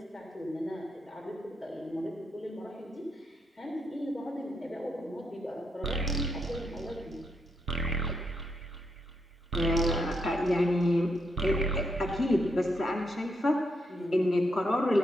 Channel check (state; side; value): normal; both; correlation 0.80